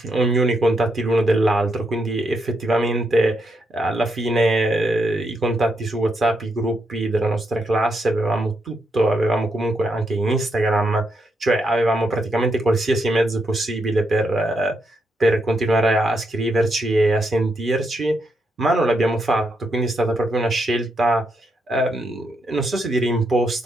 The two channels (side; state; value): both; normal; correlation 0.81